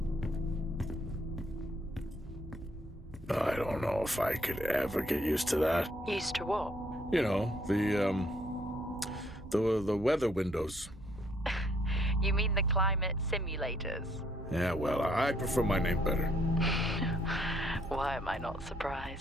I don't know if I could ever get used to that. Used to what? You know, the weather windows. You mean the climate simulators? Yeah, well, I prefer my name better. Why am I not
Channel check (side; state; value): both; normal; correlation 0.68